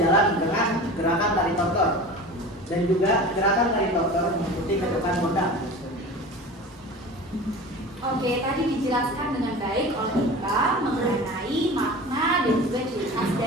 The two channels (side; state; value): both; normal; correlation 0.35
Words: dengan gerakan tari tortor, dan juga gerakan tari tortor mengikuti ketukan gondang. Oke, tadi dijelaskan dengan baik oleh kita mengenai makna dan juga ciri khas